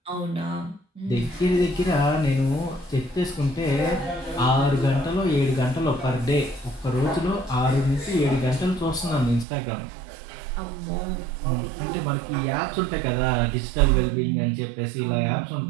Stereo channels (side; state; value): left; drops out; at 9.5 s